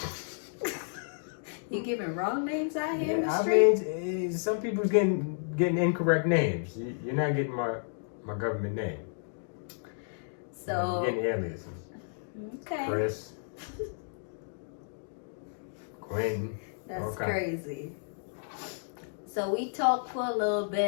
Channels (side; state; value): right; silent; digital silence